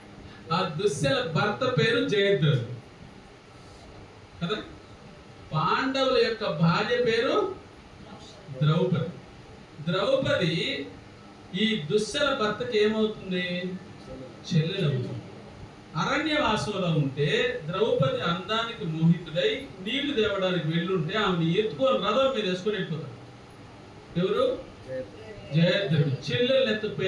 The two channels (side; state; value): both; identical; correlation 1.00